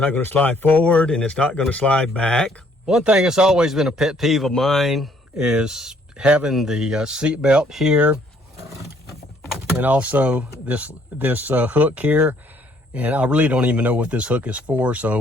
going to slide forward, and it's not going to slide back. One thing that's always been a pet peeve of mine is having the seat belt here, and also this hook here. And I really don't even know what this hook is for.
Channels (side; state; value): both; normal; correlation 0.64